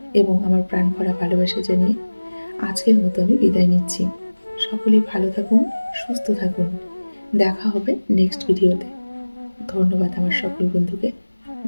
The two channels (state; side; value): inverted; both; correlation -1.00